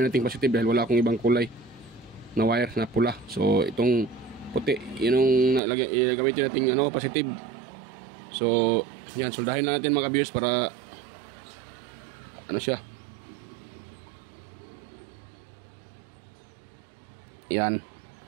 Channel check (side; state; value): left; drops out; at 5.6 s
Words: nating positive dahil wala akong ibang kulay na wire na pula. So itong puti, yun yung gamitin nating positive. So yan, soldahin na natin mga ka-viewers para siya. Yan.